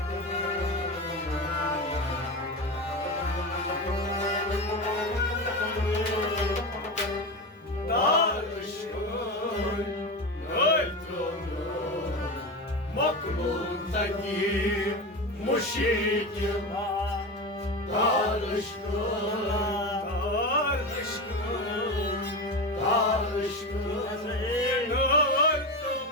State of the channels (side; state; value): both; normal; correlation 0.22